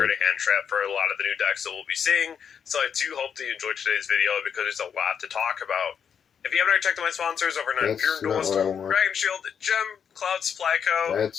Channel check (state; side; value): quieter; right; 7.4 dB